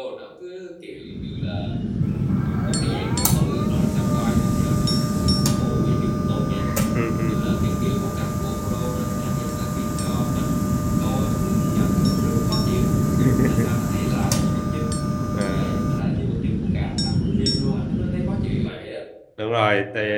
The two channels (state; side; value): identical; both; correlation 1.00